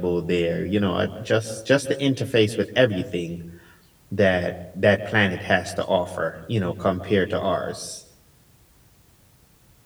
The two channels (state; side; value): identical; both; correlation 1.00